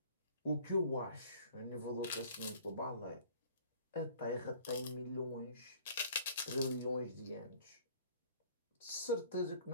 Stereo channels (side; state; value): both; inverted; correlation -0.53